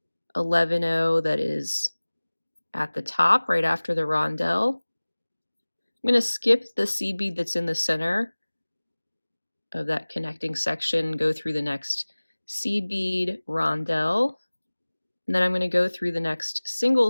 11-0 that is at the top right after the rondelle. I'm going to skip the seed bead that's in the center of that connecting section, go through the next seed bead, rondelle, and then I'm going to go through the next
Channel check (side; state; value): both; inverted; correlation -1.00